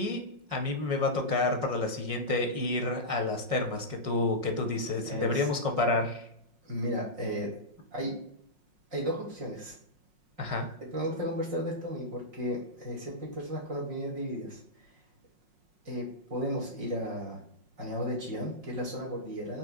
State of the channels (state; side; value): late; left; 5.5 ms